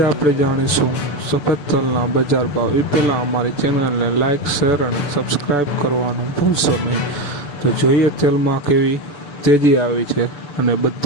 આપણે જાણીશું સફેદ તલના બજાર ભાવ। એ પહેલાં અમારી ચેનલને લાઇક, શેર અને સબસ્ક્રાઈબ કરવાનું ભૂલશો નહીં। તો જોઈએ તેલમાં કેવી તેજી આવી છે અને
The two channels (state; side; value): late; right; 6.8 ms